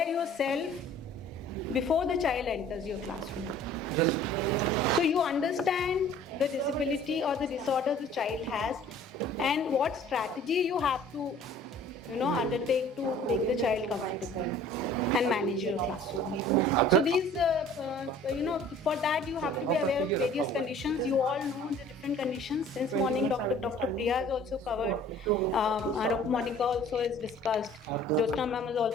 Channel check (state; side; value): normal; both; correlation 0.50